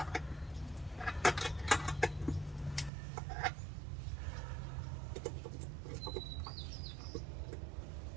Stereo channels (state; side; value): drops out; left; at 2.9 s